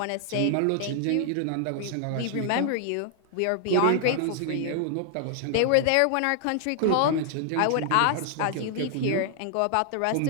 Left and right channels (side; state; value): both; different; correlation 0.00